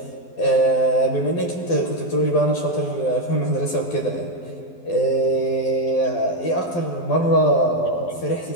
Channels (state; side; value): late; right; 12 ms